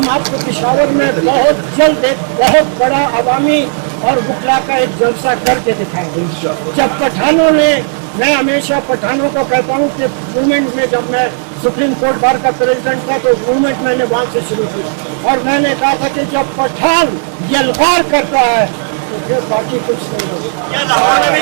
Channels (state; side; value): silent; left; digital silence